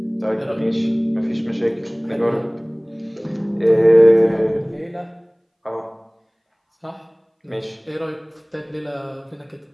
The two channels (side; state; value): both; identical; correlation 1.00